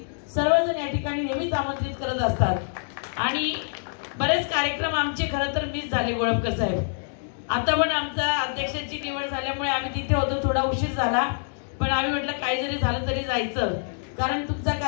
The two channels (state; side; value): silent; right; digital silence